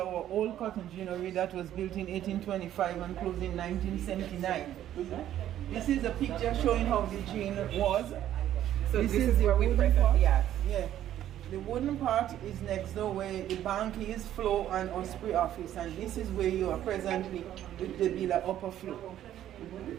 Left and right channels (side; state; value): left; quieter; 11.8 dB